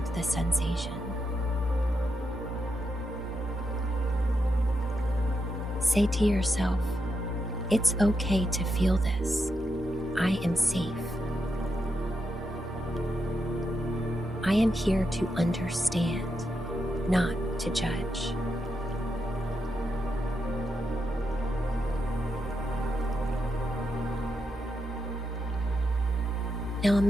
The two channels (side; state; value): both; normal; correlation 0.84